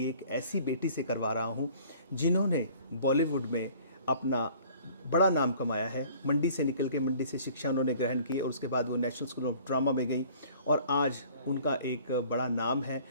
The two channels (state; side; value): inverted; both; correlation -0.52